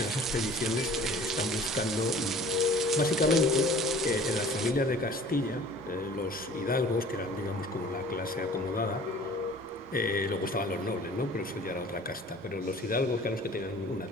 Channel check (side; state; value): both; normal; correlation 0.47